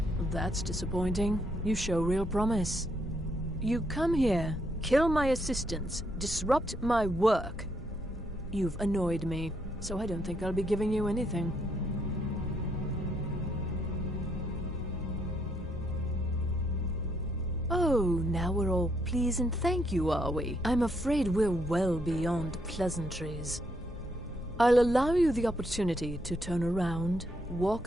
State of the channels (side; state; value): both; normal; correlation 0.74